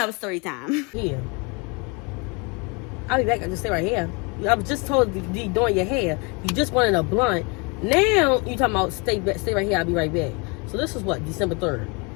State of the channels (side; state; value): right; quieter; 30.7 dB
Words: story time. Yeah. I'll be back. I just stay right here. I was just told to be doing your hair. You just wanted a blunt. Now you talking about stay right here. I'll be right back. So this was what, December 3rd.